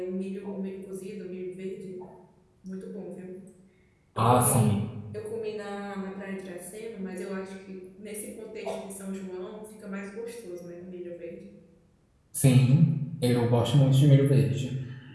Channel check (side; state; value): both; identical; correlation 1.00